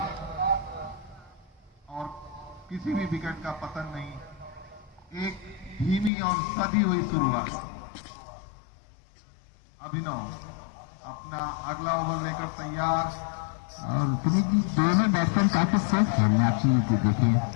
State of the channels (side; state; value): right; drops out; at 6.1 s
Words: और किसी भी विकेट का पतन नहीं। एक धीमी और सधी हुई शुरुआत। अभिनव अपना अगला ओवर लेकर तैयार। और पुनीत जी दोनों बैट्समैन काफी सेफ खेलने आप चीज देखिए।